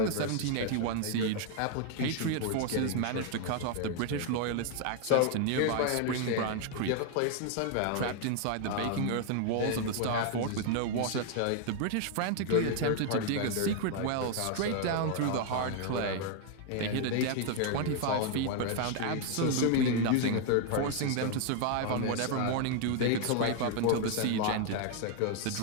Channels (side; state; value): both; different; correlation 0.00